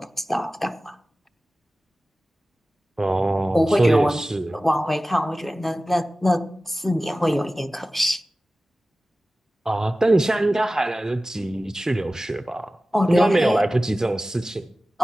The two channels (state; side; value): normal; both; correlation 0.96